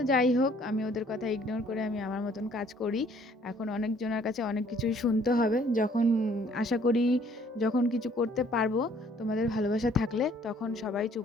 যাই হোক, আমি ওদের কথা ইগনোর করে আমি আমার মতন কাজ করি। এখন অনেকজনের কাছে অনেক কিছুই শুনতে হবে, যখন আশা করি যখন কিছু করতে পারবো তোমাদের ভালোবাসা থাকলে, তখন সবাই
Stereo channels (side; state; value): both; normal; correlation 0.60